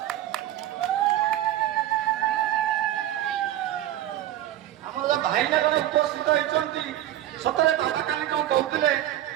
भाईना जन उपस्थित होती सतरे बाबा काली कौन कहते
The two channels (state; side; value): quieter; left; 13.1 dB